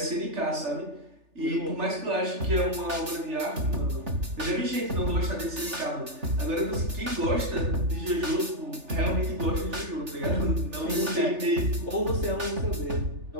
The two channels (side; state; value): left; late; 3.4 ms